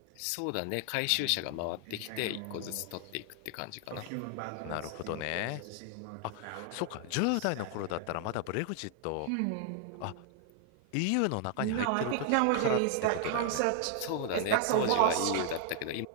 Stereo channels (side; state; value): both; different; correlation 0.00